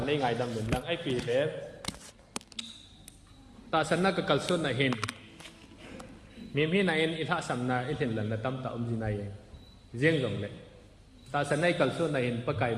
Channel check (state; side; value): identical; both; correlation 1.00